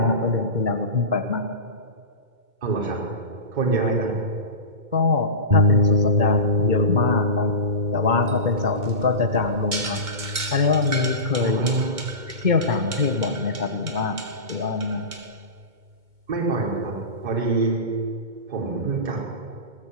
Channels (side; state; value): left; late; 2.2 ms